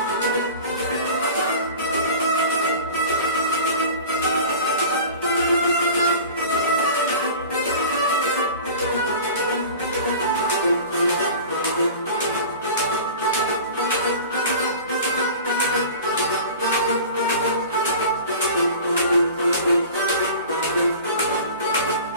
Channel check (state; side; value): inverted; both; correlation -0.38